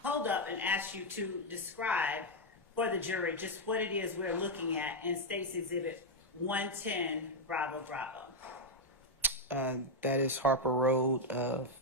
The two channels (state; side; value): normal; both; correlation 0.00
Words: hold up and ask you to describe for the jury just what it is we're looking at in State's Exhibit 110 Bravo Bravo. That is Harper Road,